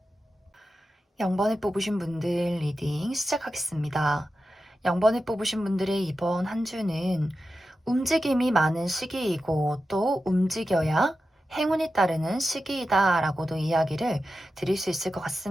0번을 뽑으신 분들 리딩 시작하겠습니다. 0번을 뽑으신 분들의 이번 한 주는 움직임이 많은 시기이고, 또 움직여야 행운이 따르는 시기이다라고도 이야기를 드릴 수 있을 것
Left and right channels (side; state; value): both; normal; correlation 0.91